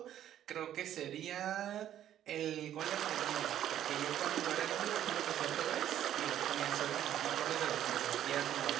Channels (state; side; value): quieter; left; 11.2 dB